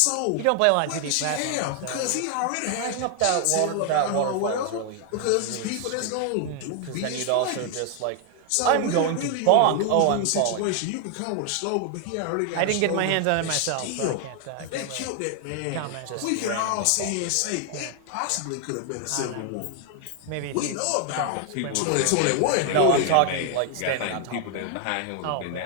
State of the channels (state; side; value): different; both; correlation 0.00